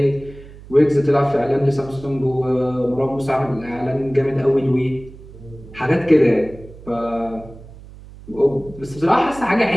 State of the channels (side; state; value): right; noise; hum, 18 dB below the sound